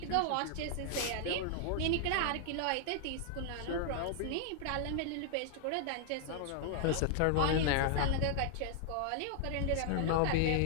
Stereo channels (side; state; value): both; different; correlation 0.00